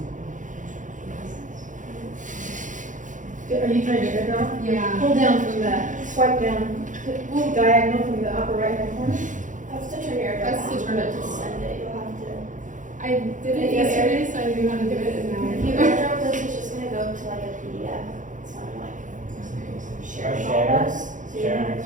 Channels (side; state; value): left; late; 0.37 ms